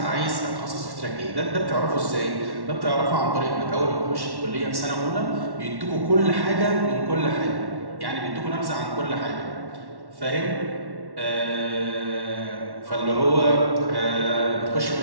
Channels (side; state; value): left; late; 1.1 ms